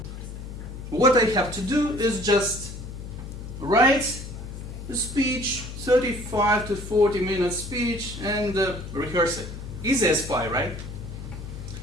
What I have to do is just write a speech, 35 to 40 minute speech, and rehearse it. Easy as pie, right?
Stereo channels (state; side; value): noise; left; hum, 10 dB below the sound